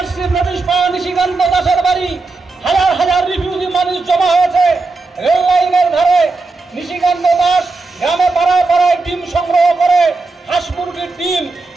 নোটিশ পাওয়া নিশিকান্ত দাসের বাড়ি। হাজার হাজার রিফিউজি মানুষ জমা হয়েছে রেল লাইনের ধারে। নিশিকান্ত দাস গ্রামে পাড়ায় পাড়ায় ডিম সংগ্রহ করে, হাঁস মুরগির ডিম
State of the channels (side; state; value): left; quieter; 3.7 dB